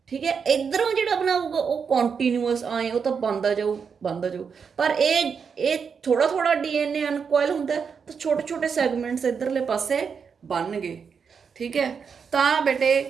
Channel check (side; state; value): left; quieter; 6.2 dB